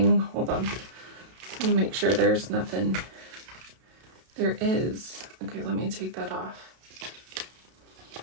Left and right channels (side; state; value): left; late; 32 ms